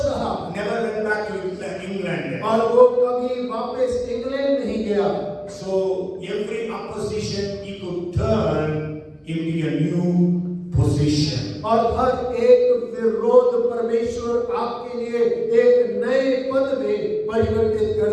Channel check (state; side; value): identical; both; correlation 1.00